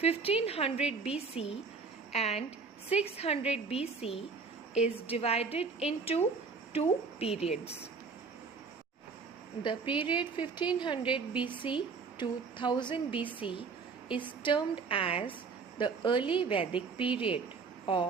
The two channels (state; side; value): quieter; left; 4.9 dB